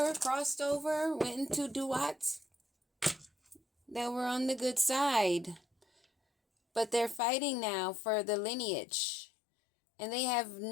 crossed over, went into duats, that were on the good side. But they're fighting now for the lineage. And they have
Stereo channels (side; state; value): right; drops out; at 7.2 s